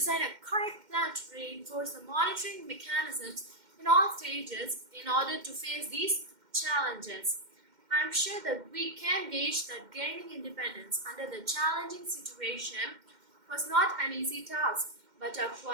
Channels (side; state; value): left; late; 2.1 ms